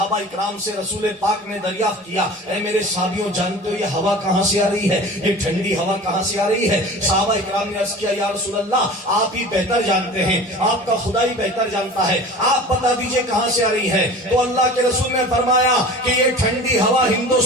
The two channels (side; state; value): both; normal; correlation 0.38